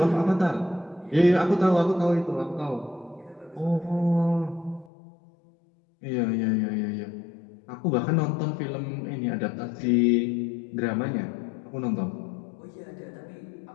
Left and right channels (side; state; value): right; drops out; at 4.9 s